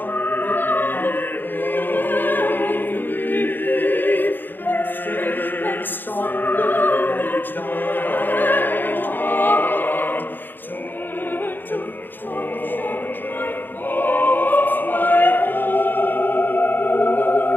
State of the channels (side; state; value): right; late; 0.093 ms